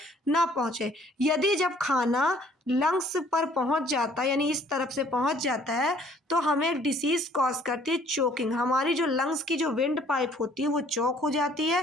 ना पहुंचे। यदि जब खाना लंग्स पर पहुंच जाता है, यानी इस तरफ से पहुंच जाता है, तो हमें एक डिसीज कॉज करती है चोकिंग। हमारी जो लंग्स की जो विंड पाइप होती है वो चोक हो जाती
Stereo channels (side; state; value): both; normal; correlation 0.58